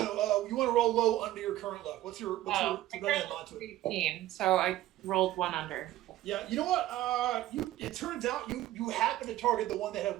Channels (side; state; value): left; quieter; 14.8 dB